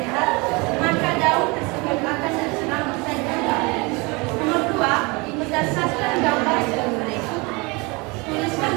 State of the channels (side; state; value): left; quieter; 26.9 dB